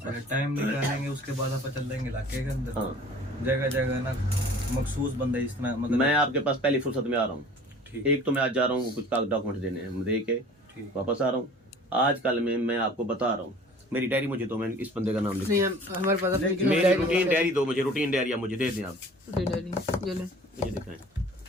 अगर टाइम निकालेंगे उसके बाद आप चल देंगे इलाके के अंदर जगह जगह ना मखसूस बंदे इस तरह मतलब मैं आपके पास पहली फुर्सत में आ रहा हूँ एक तो मैं आज जा रहा हूँ कुछ डॉक्यूमेंट देने हैं दे के वापस आ रहा हूँ आजकल में मैं आपको बता रहा हूँ, मेरी डायरी मुझे दो, मैं इस बंदे का नाम लिख, नहीं हमारे पास अपनी मेरी रूटीन डायरी दो मुझे, रूटीन डायरी आप मुझे दे दें आप, डायरी ये ले मुझे दिखाएं।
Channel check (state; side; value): normal; both; correlation 0.47